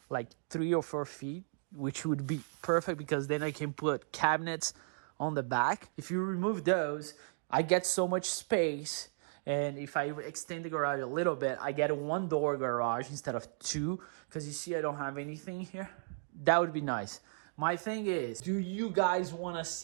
like 3 or 4 feet, which would be perfect because then I can put cabinets on the back. If you remove those, I get so much space. And if I extend the garage a little bit, I get a 1-door garage instead of 2, because you see I don't have anything here. That would be nice. My thing is, do you guys want to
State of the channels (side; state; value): left; silent; digital silence